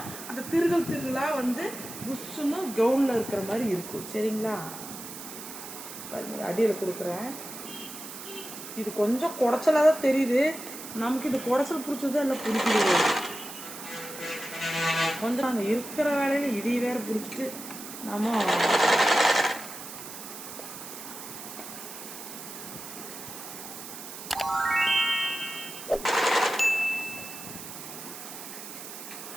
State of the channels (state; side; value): noise; right; hiss, 11 dB below the sound